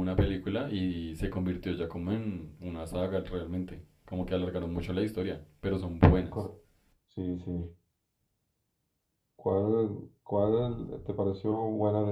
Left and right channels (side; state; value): both; identical; correlation 1.00